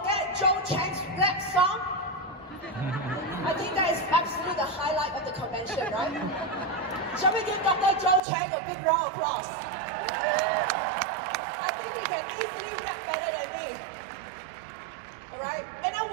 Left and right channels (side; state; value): left; drops out; at 8.2 s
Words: Joe Chang's rap song. I think that is absolutely the highlight of the convention, right? Shall we give Dr. Joe Chang a big round of applause? I think he can easily rap better than me. Alright? And I